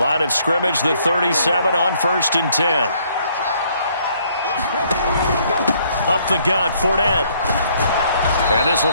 of scrimmage, the 37 on 1st and 10. Up the gut, Fournette. And this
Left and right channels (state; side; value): inverted; both; correlation -0.66